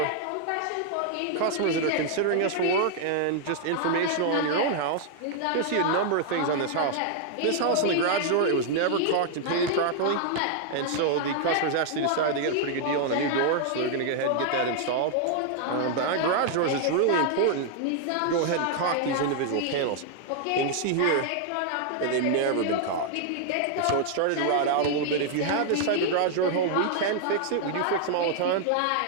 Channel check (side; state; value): both; different; correlation 0.00